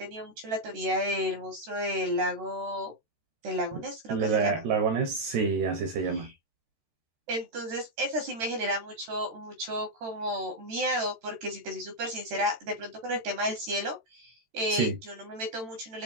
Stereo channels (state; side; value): late; left; 13 ms